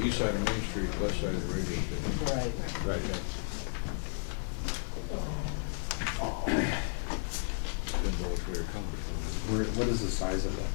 east side of Main Street, west side of the radio station. Right. Right. Been What is the size of that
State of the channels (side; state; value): right; silent; digital silence